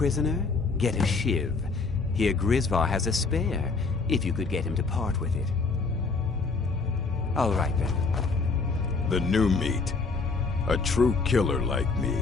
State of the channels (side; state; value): right; quieter; 4.3 dB